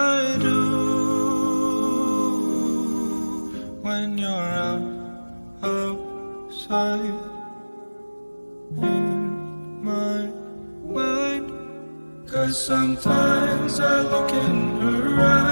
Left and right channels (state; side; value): inverted; both; correlation -1.00